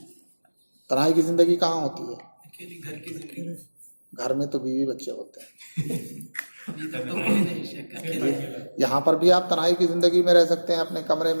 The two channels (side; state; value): both; inverted; correlation -1.00